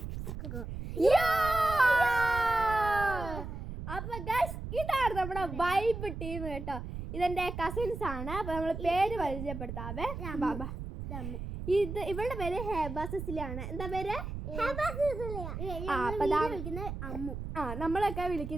അപ്പൊ ഗൈസ്, ഇതാണ് നമ്മുടെ വൈബ് ടീം കേട്ടോ. ഇതെന്റെ കസിൻസ് ആണ്. അപ്പൊ നമ്മൾ പേര് പരിചയപ്പെടുത്താവേ. ഇത് ഇവളുടെ പേര് ഹേബ സിസിലിയാണ്. എന്താ പേര്? നമ്മളൊക്കെ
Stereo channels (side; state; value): right; noise; rumble, 7 dB below the sound